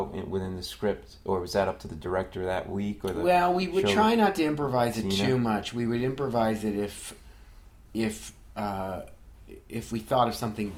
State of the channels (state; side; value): identical; both; correlation 1.00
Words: within the script? Or was that up to the director that week? Well, we would try not to improvise it too much. We would improvise it if we thought of something